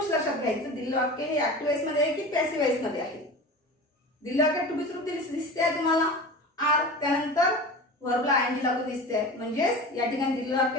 लक्षात घ्यायचं. दिलेलं वाक्य हे ऍक्टिव्ह वॉइस मध्ये आहे की पॅसिव्ह वॉइस मध्ये आहे? दिलेलं वाक्य टू बी रूप दिसते आहे तुम्हाला आर, त्यानंतर व्हर्बला आयएनजी लागून दिसते आहे, म्हणजेच या ठिकाणी दिलेलं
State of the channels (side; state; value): both; normal; correlation 0.33